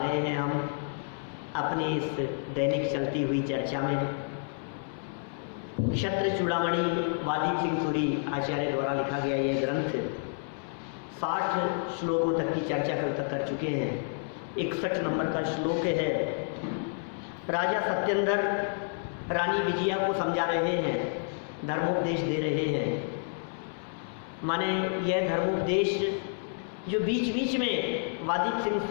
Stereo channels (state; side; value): silent; right; 58 dB below the other